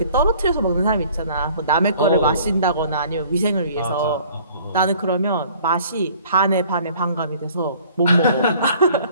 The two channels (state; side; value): inverted; both; correlation -0.54